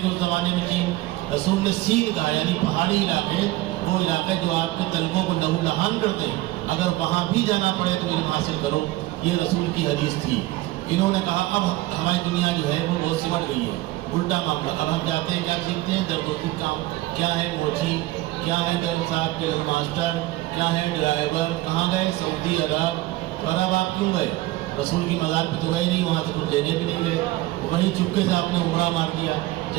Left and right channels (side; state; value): left; quieter; 17.8 dB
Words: گے اس زمانے میں چین؟ رسول نے سین کہا، یعنی پہاڑی علاقے، وہ علاقے جو آپ کے طلبوں کو لہو لہان کرتے ہیں، اگر وہاں بھی جانا پڑے تو علم حاصل کرو۔ یہ رسول کی حدیث تھی۔ انہوں نے کہا اب ہماری دنیا جو ہے وہ بہت سمٹ گئی ہے، الٹا معاملہ۔ اب ہم جاتے ہیں، کیا سیکھتے ہیں؟ درد و دکھ کام، کیا ہے موچی، کیا ہے گرم صاحب کے ماسٹر، کیا ہے ڈرائیور، کہاں گئے؟ سعودی عرب۔ اور اب آپ کیوں گئے؟ رسول کی مزار پہ تو گئے نہیں، وہاں سے کچھ لینے بھی نہیں گئے، وہیں چپکے سے آپ نے عمرہ مار دیا۔